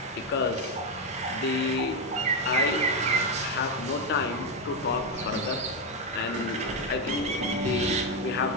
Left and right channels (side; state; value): both; normal; correlation 0.07